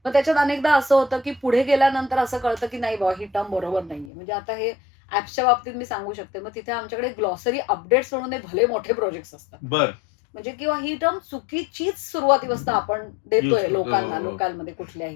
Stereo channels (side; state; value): right; drops out; at 4.1 s